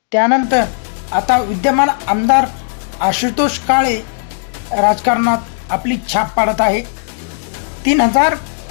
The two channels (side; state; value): right; silent; digital silence